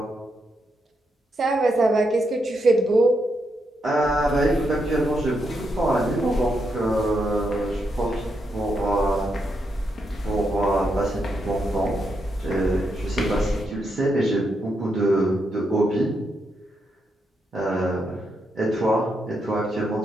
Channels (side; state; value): both; normal; correlation 0.82